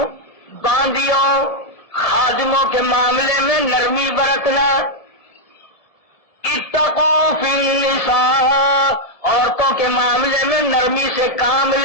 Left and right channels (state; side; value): late; right; 1.7 ms